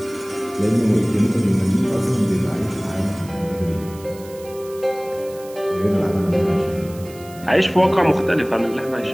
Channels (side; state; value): right; noise; hiss, 21 dB below the sound